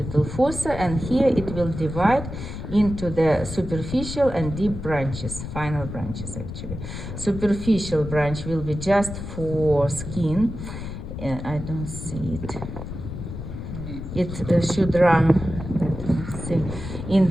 fossa, and here it will divide into the superficial and deep branches, final branches actually. Superficial branch will be just for skin. I don't see it. It should run. Let's see. In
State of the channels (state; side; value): noise; left; rumble, 8 dB below the sound